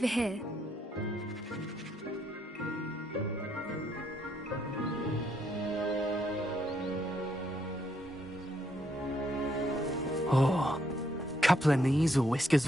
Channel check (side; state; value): both; normal; correlation 0.74